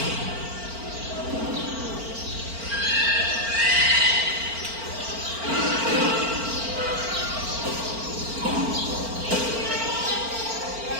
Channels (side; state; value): left; late; 4.4 ms